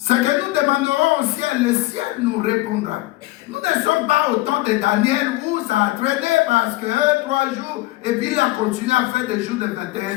que nous demanderons au ciel, le ciel nous répondra. Nous ne sommes pas au temps de Daniel où ça a traîné parce que 3 jours, et puis il a continué à faire des jours de 21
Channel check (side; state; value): right; quieter; 18.8 dB